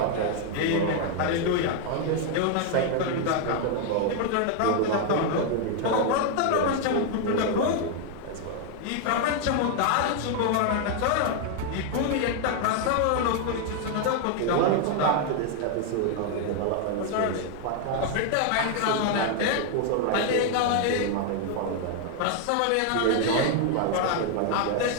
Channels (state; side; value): different; both; correlation 0.00